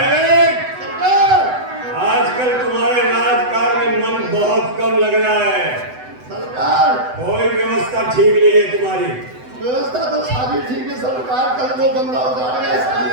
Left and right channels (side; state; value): left; late; 8.0 ms